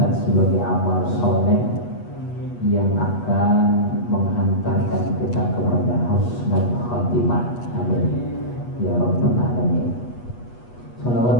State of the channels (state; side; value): late; right; 8.3 ms